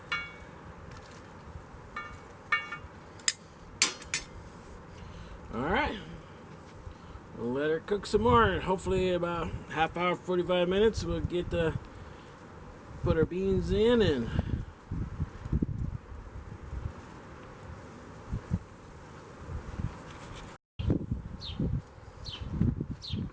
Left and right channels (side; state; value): both; identical; correlation 1.00